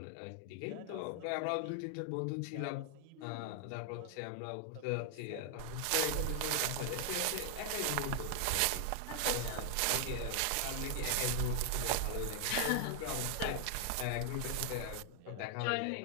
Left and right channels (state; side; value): different; both; correlation 0.00